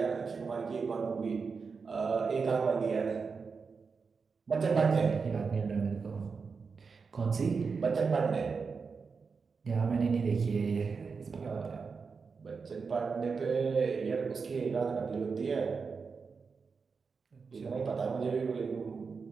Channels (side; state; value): left; quieter; 5.1 dB